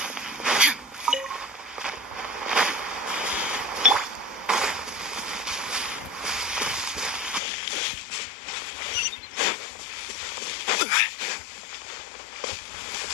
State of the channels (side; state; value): right; drops out; at 7.4 s